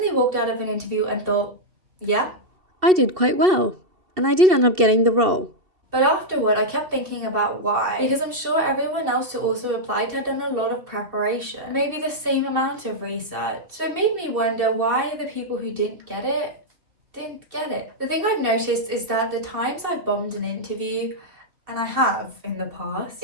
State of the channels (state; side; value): late; left; 2.7 ms